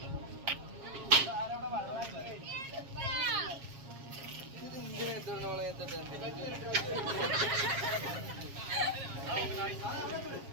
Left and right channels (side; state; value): left; late; 7.4 ms